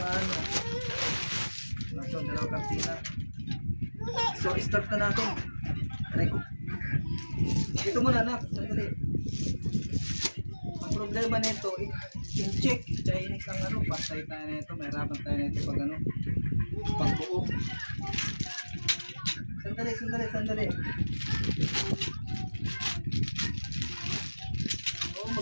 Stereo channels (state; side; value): inverted; both; correlation -1.00